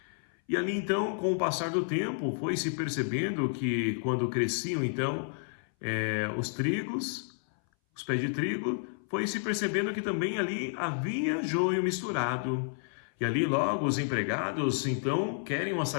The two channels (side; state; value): right; silent; 57 dB below the other